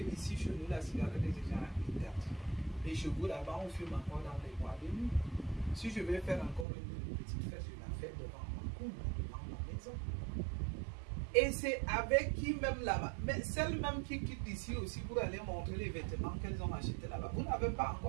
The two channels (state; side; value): drops out; left; at 6.7 s